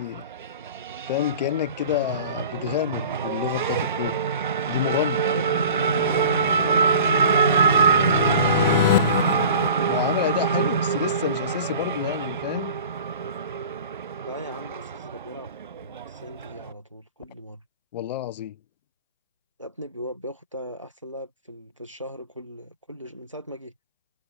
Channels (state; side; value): inverted; both; correlation -0.40